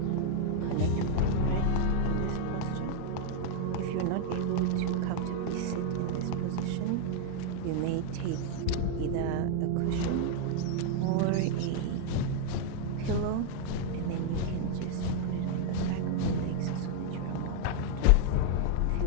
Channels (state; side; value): different; both; correlation 0.00